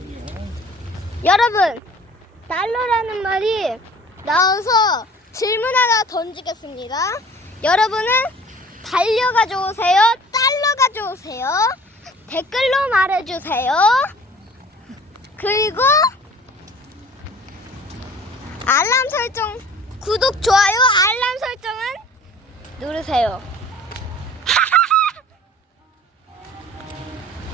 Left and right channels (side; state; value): both; normal; correlation 0.48